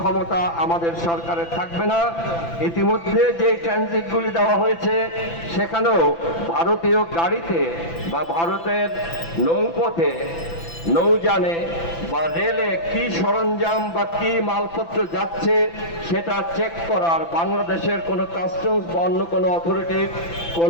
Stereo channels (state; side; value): late; right; 5.9 ms